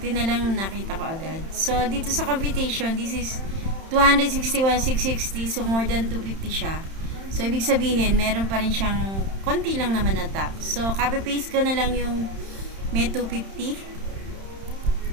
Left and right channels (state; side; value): late; left; 31 ms